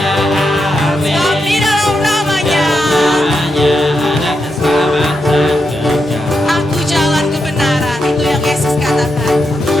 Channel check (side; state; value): both; normal; correlation 0.84